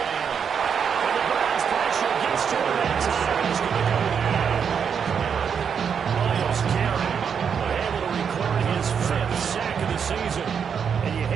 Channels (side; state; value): left; quieter; 7.0 dB